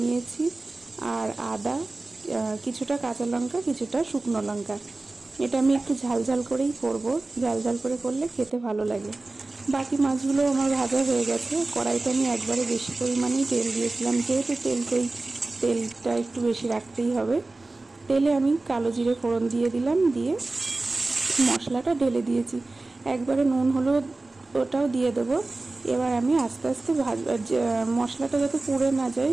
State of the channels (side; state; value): left; quieter; 3.2 dB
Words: নিয়েছি, আর আদা, কিছুটা কাঁচা লঙ্কা, কিছুটা শুকনো লঙ্কা। এটা আমি একটু ঝাল ঝাল করেই করব, ঝাল ঝাল করে করলে খেতে ভালো লাগে। বাকি মাছগুলো আমার ভাজা হয়ে গেছে। কড়াইতে আমি একবারে বেশি পরিমাণেই তেল দিয়েছিলাম, যেহেতু তেলটা একটু বেশি রাখতেই হবে। তেলে আমি কালো জিরে ফোড়ন দিয়ে দিলাম, দিয়ে মশলাটা ঢেলে দিয়েছি। একবারে নুন হলুদ ওটাও দিয়ে দেবো। এবার আমি আস্তে আস্তে মশলাটা যাতে পুড়ে না যায়